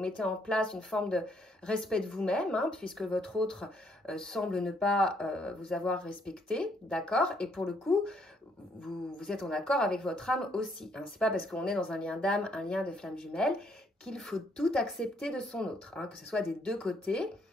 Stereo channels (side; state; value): both; normal; correlation 0.70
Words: en place une forme de respect de vous-même, hein, puisque votre autre semble ne pas vous avoir respecté, d'accord? Et pour le coup, vous êtes en accord avec votre âme aussi. Hein. Ce n'est pas parce qu'on est dans un lien d'âme, un lien de flamme jumelle, qu'il faut tout accepter de son autre, hein, que ce soit des deux côtés.